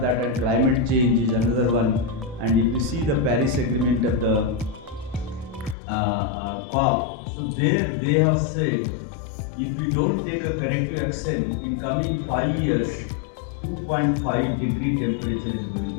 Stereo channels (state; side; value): drops out; right; at 5.8 s